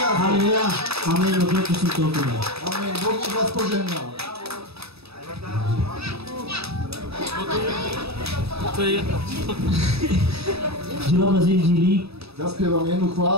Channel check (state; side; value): late; left; 0.78 ms